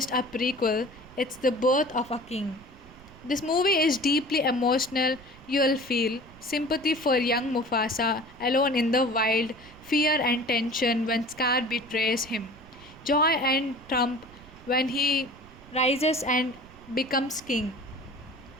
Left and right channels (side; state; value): right; noise; rumble, 21 dB below the sound